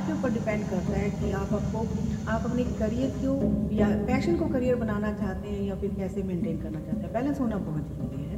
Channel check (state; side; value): identical; both; correlation 1.00